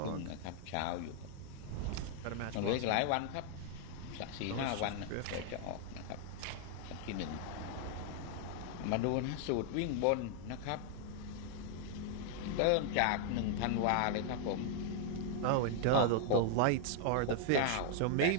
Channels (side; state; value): both; different; correlation 0.00